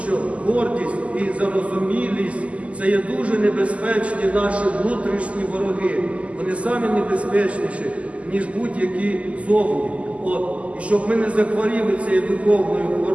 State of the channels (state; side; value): late; left; 0.065 ms